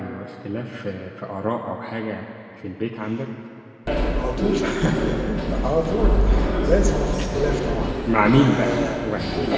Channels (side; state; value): both; identical; correlation 1.00